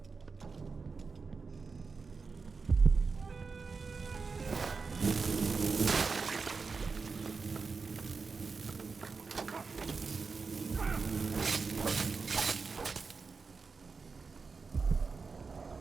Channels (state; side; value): quieter; left; 4.7 dB